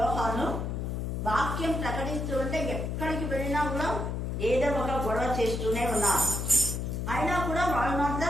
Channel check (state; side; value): noise; left; hum, 3 dB below the sound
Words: వాక్యం ప్రకటిస్తూ ఉంటే ఎక్కడికి వెళ్ళినా కూడా ఏదో ఒక గొడవ చేస్తూనే ఉన్నారు. అయినా కూడా వాళ్ళు